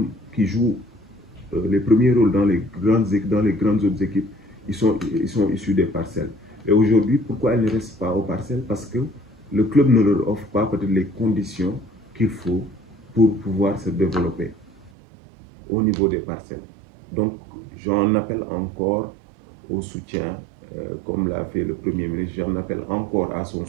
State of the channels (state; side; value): drops out; left; at 14.9 s